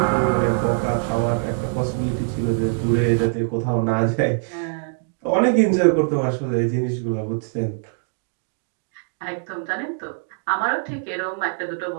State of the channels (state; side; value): silent; left; digital silence